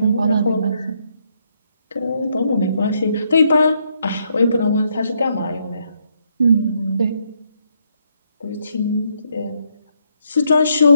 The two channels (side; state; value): both; inverted; correlation -0.74